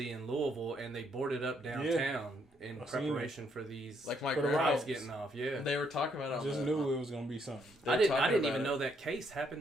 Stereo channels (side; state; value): both; normal; correlation 0.72